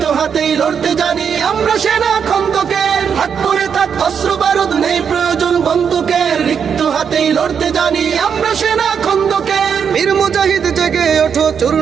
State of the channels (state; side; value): quieter; left; 7.1 dB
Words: হাতেই লড়তে জানি আমরা সেনা খন্দকের। থাক করে থাক অস্ত্র বারুদ, নেই প্রয়োজন বন্দুকের। রিক্ত হাতেই লড়তে জানি আমরা সেনা খন্দকের। বীর মুজাহিদ জেগে ওঠো,